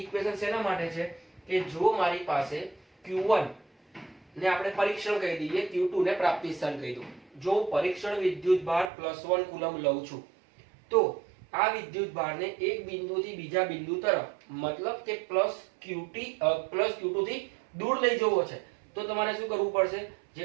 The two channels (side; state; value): left; drops out; at 8.9 s